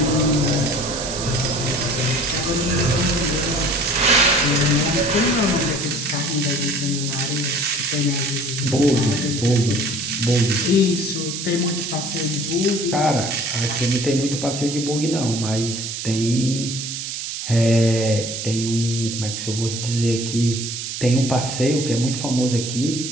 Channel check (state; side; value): noise; right; hiss, 6 dB below the sound